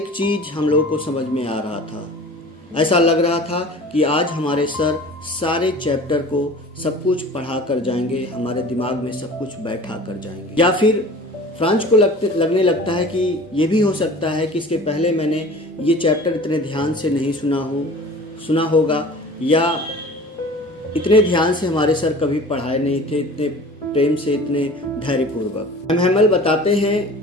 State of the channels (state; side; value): normal; both; correlation 0.42